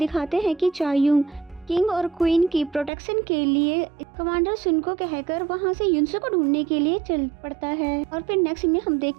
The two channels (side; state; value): left; drops out; at 2.9 s